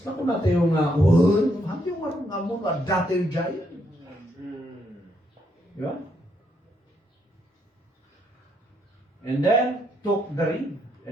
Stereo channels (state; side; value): normal; both; correlation 0.75